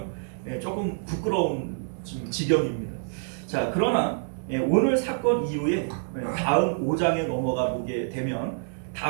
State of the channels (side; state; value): left; silent; 60 dB below the other